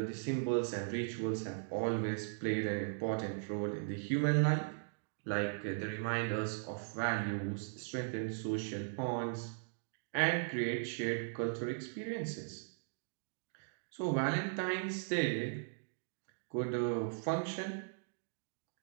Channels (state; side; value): silent; left; digital silence